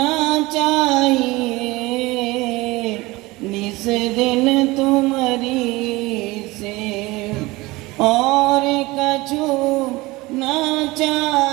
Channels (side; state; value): left; quieter; 21.3 dB